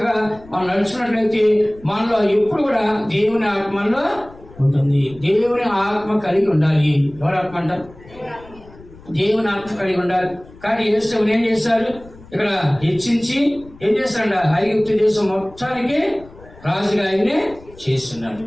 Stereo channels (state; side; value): noise; left; rumble, 22 dB below the sound